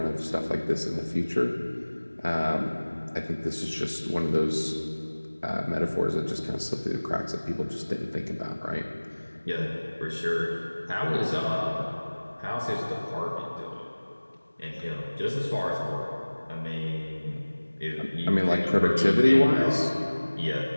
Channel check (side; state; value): both; inverted; correlation -1.00